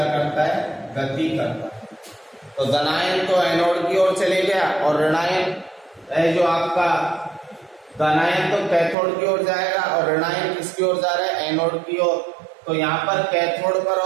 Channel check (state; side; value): drops out; left; at 9.0 s